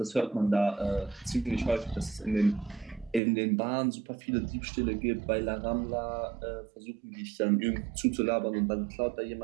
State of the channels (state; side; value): drops out; left; at 3.2 s